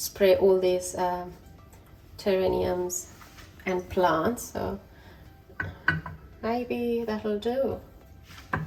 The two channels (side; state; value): both; identical; correlation 1.00